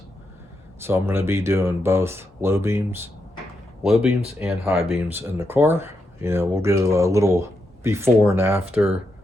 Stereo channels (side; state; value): both; normal; correlation 0.83